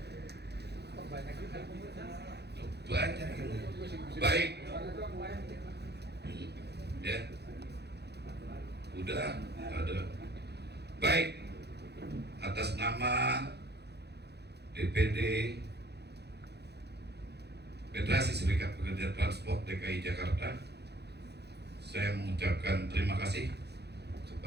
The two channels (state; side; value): late; left; 0.48 ms